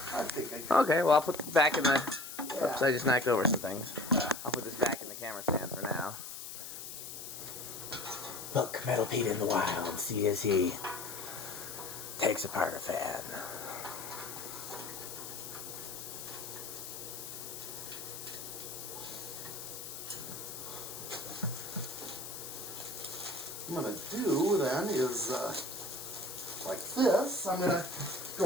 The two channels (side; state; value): left; noise; hiss, 9 dB below the sound